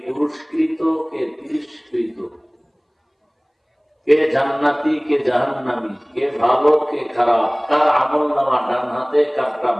পুরস্কৃত, কে তিরস্কৃত, কে জান্নাতি, কে জাহান্নামী, কে ভালো, কে খারাপ, কার আমল নামা ডান হাতে, কারটা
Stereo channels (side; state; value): both; identical; correlation 1.00